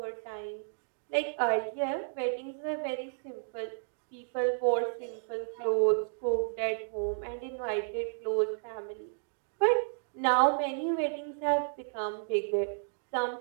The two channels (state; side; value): silent; left; digital silence